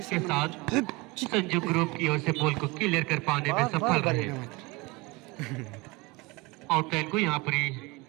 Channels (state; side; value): quieter; left; 24.6 dB